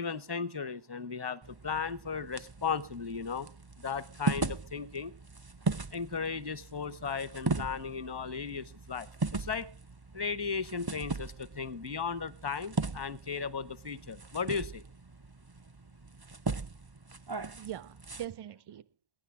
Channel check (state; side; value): late; left; 1.1 ms